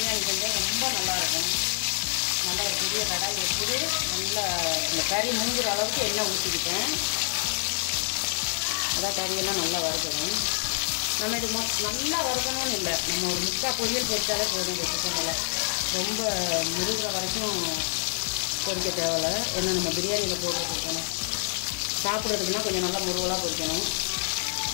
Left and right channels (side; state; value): right; silent; 58 dB below the other